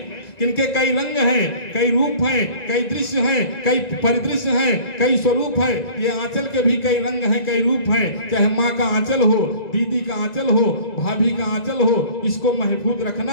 कि इनके कई रंग हैं, कई रूप हैं, कई दृश्य हैं, कई परिदृश्य हैं, कई स्वरूप है। ये आंचल के भी कई रंग हैं, कई रूप हैं। चाहे माँ का आंचल हो, दीदी का आंचल हो, भाभी का आंचल हो, इसको महफूज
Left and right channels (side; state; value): right; late; 1.9 ms